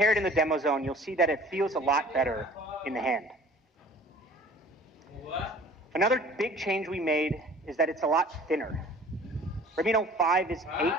it in the demo zone, you'll see that it feels a lot better in the hand. Another big change we made is that it's a lot thinner. Redmi Note 5 is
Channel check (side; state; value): both; normal; correlation 0.49